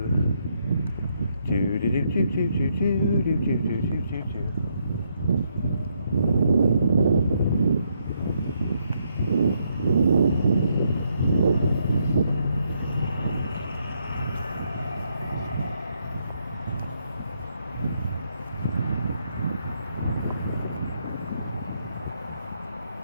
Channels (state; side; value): inverted; both; correlation -0.75